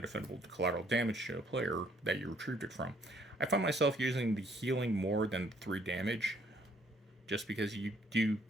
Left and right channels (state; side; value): normal; both; correlation 0.65